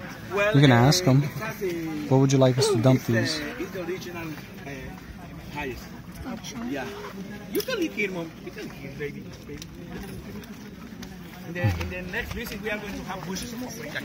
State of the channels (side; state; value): both; identical; correlation 1.00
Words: Well, You can ask them. that's the- Where would you like us to dump it's these? it's the original highest. Yeah. You can live here, Mom. You can live here, baby. In the next visit, we are going to have bushes of paprika